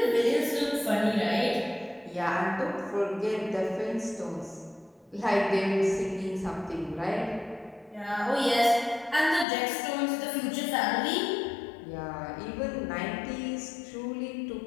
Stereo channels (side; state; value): right; drops out; at 9.5 s